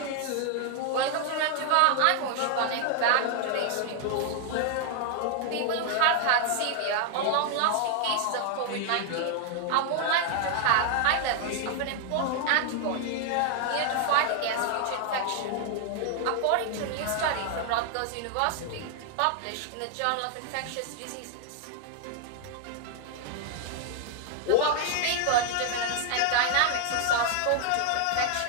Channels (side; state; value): both; different; correlation 0.00